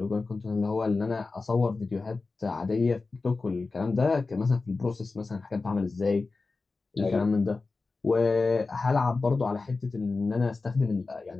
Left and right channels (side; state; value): right; quieter; 3.9 dB